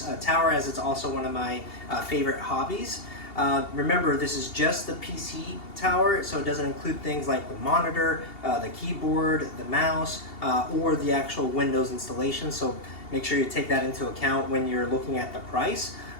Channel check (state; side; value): late; right; 2.8 ms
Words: tower as it's also one of my favorite hobbies. Remember, this is just the PC tower, so it doesn't include things like the monitor, the keyboard, the mouse, or the actual Windows installation. So make sure you take that into account when you're looking at the price.